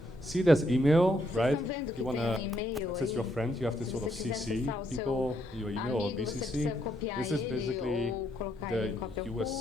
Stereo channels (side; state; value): both; normal; correlation 0.75